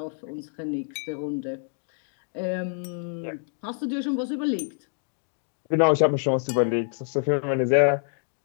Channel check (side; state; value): right; silent; digital silence